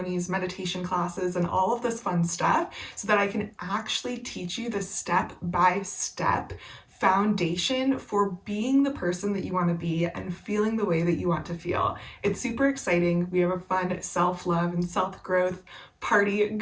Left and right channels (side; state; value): both; identical; correlation 1.00